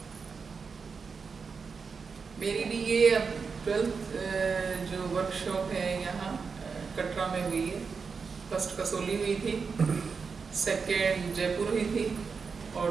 मेरी भी ये 12th जो वर्कशॉप है यहाँ कटरा में हुई है। फर्स्ट कसोली हुई थी, सेकेंड जयपुर हुई थी और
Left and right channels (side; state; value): left; quieter; 5.3 dB